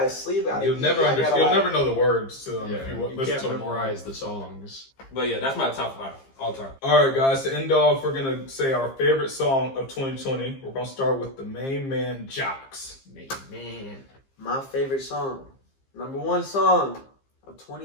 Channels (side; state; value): right; late; 15 ms